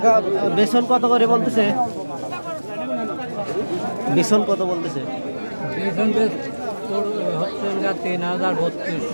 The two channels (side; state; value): both; inverted; correlation -1.00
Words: বেসন কত করে বলতেছে? বেসন কত বলতেছে? হচ্ছে 3000,